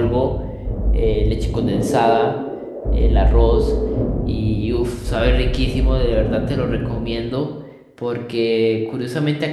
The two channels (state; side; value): identical; both; correlation 1.00